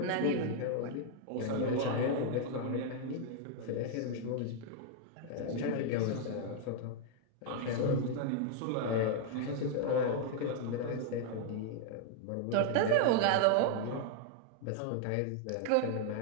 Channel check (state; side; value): different; both; correlation 0.00